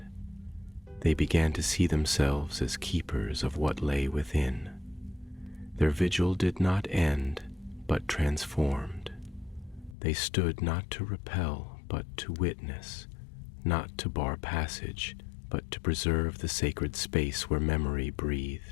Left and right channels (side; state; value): right; drops out; at 10.0 s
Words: They began to see themselves as keepers of what lay within. Their vigil did not end, but transformed. They stood not to repel, but to witness, not to bar passage, but to preserve the sacred space where memory